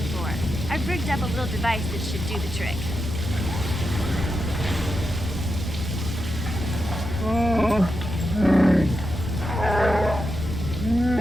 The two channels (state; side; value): normal; both; correlation 0.87